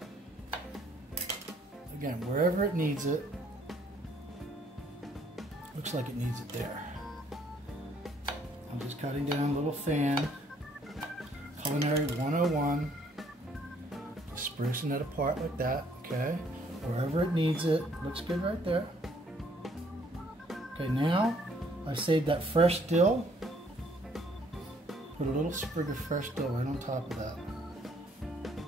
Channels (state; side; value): normal; both; correlation 0.65